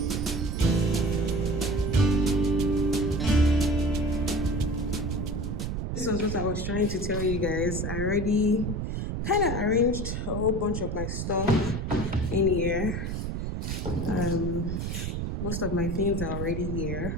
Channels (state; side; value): noise; right; rumble, 2 dB below the sound